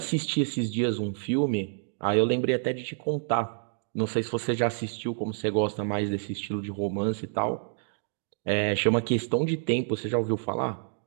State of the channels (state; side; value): silent; left; digital silence